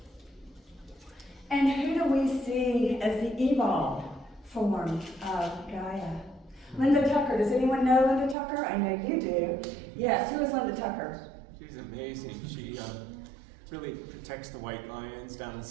And who do we see as the evolved form of Gaia? Linda Tucker. Does anyone know Linda Tucker? I know you do. Yes, who is Linda Tucker? She's amazing. She really protects the white lions down in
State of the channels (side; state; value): left; drops out; at 8.3 s